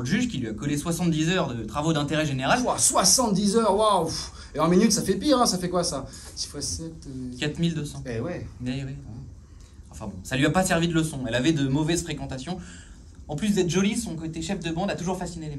juge qui lui a collé 70 heures de travaux d'intérêt général. Ouah, 70 heures, waouh. Et en minutes, ça fait pire, hein, ça fait quoi ça? 6 x 7... 4200. Eh ouais. Mais oui. Enfin bon, ça lui a pas servi de leçon. Elle avait de mauvaises fréquentations. En plus d'être jolie, son côté chef de bande a toujours fasciné les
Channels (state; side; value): identical; both; correlation 1.00